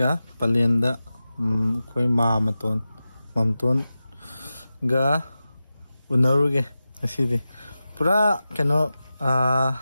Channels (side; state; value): both; inverted; correlation -0.94